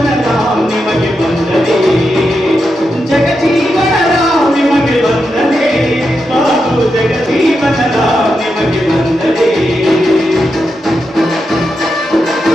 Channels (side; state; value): both; normal; correlation 0.86